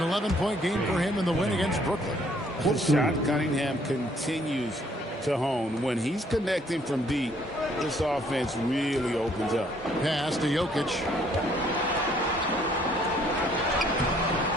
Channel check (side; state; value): both; normal; correlation 0.64